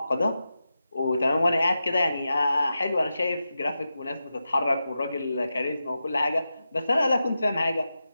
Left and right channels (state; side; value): inverted; both; correlation -0.90